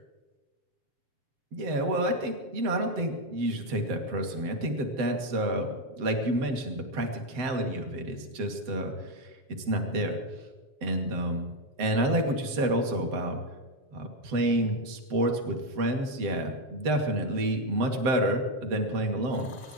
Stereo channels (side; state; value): left; late; 7.8 ms